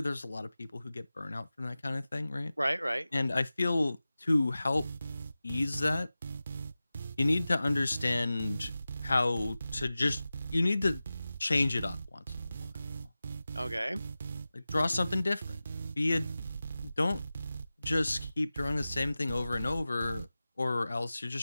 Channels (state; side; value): inverted; both; correlation -0.96